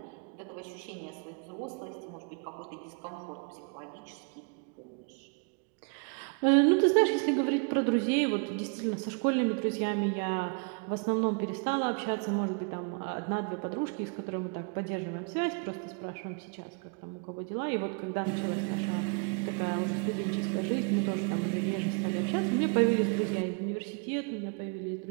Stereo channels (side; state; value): left; quieter; 37.0 dB